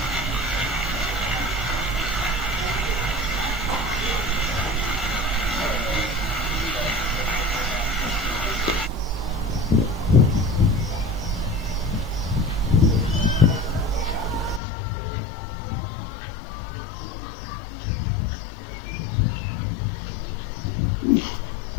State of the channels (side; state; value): right; drops out; at 14.6 s